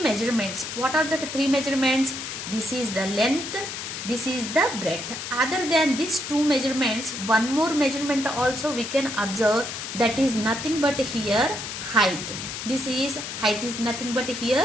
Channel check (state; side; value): noise; left; hiss, 7 dB below the sound